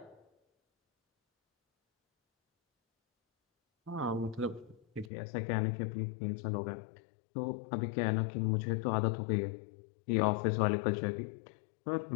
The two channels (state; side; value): drops out; right; at 5.1 s